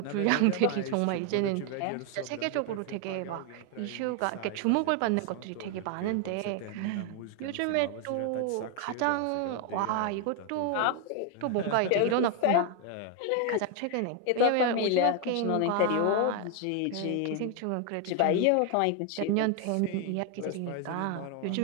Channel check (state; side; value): different; both; correlation 0.00